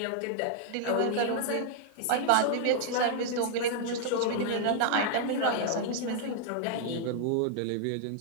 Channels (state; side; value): different; both; correlation -0.01